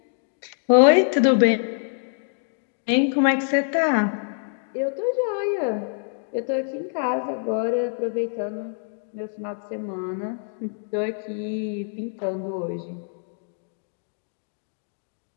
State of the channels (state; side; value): silent; right; digital silence